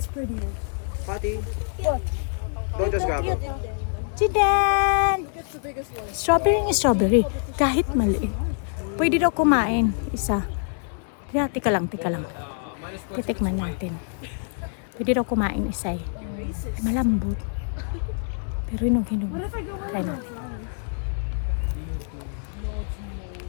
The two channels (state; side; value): silent; right; digital silence